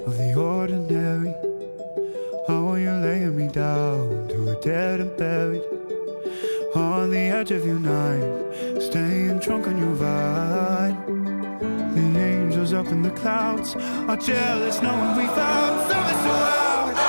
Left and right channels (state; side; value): inverted; both; correlation -1.00